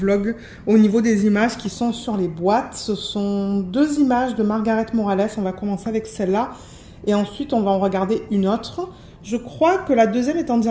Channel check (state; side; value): identical; both; correlation 1.00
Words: au niveau des images qui sont sur les boîtes. Ce sont deux images de Margaret Morales. On va commencer avec celle-là et ensuite on va en regarder une autre. Je crois que la deuxième est en